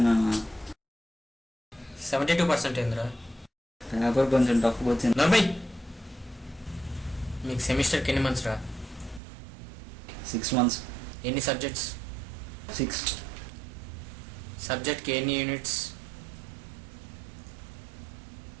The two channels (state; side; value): drops out; left; at 9.2 s